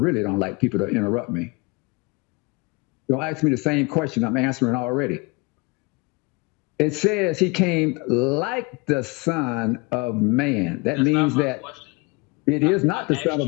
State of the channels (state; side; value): quieter; right; 26.9 dB